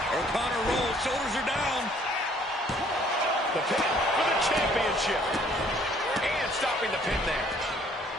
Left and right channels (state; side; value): normal; both; correlation 0.60